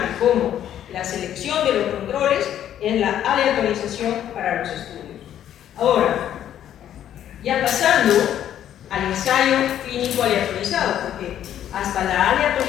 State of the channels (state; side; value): quieter; right; 10.8 dB